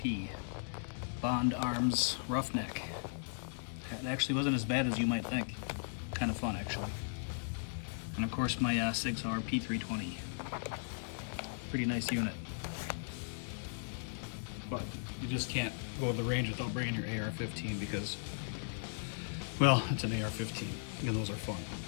Bond Arms Roughneck. It actually wasn't as bad as you might think. Kind of fun, actually. And of course, my Sig Sauer P320. Pretty nice unit. But you just can't go to the range without bringing your Ar-15 because, well, it's an Ar-15, and those are fun.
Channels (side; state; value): right; silent; digital silence